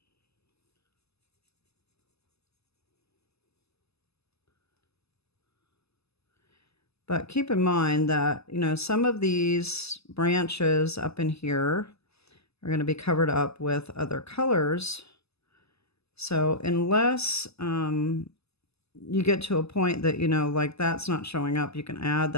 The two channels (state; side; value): late; right; 0.79 ms